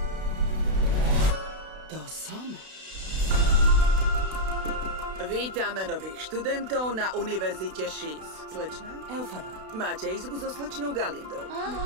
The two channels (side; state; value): left; late; 32 ms